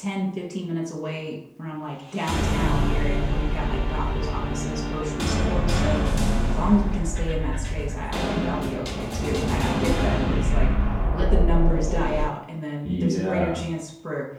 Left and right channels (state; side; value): identical; both; correlation 1.00